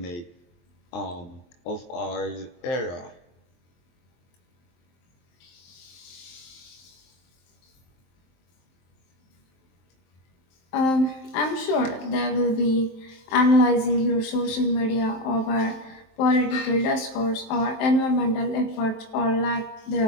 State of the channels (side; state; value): right; late; 23 ms